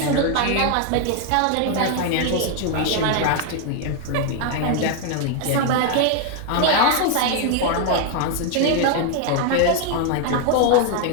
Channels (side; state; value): both; different; correlation 0.00